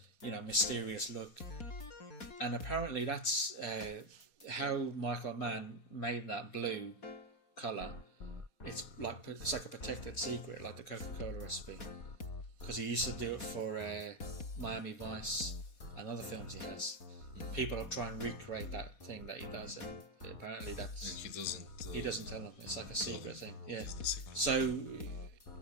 mysterious look. And apparently that's how Michael Mann made that blue colour. It's like a protected secret, like the Coca-Cola recipe, because he used to do it for Miami Vice and other films he has. People will try and recreate that thing that he does, and apparently that's. And he doesn't. He doesn't tell them. It's like a secret thing. Yeah. So,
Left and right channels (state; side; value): late; right; 4.2 ms